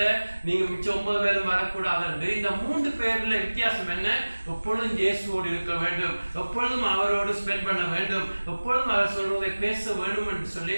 நீங்க மிச்சம் 9 பேரும் வரக்கூடாது என்று. இந்த 3 பேர்ல வித்தியாசம் என்ன? எப்பொழுதும் இயேசுவோடு இருக்க வேண்டும், எப்பொழுதும் அவரோடு ஸ்பெண்ட் பண்ண வேண்டும், எப்பொழுதும் அவர் சொல்வதை பேச வேண்டும் என்று சொல்லி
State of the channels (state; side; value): inverted; both; correlation -1.00